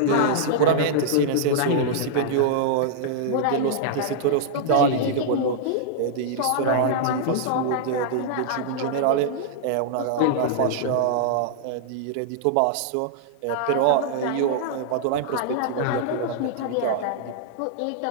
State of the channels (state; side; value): different; both; correlation -0.01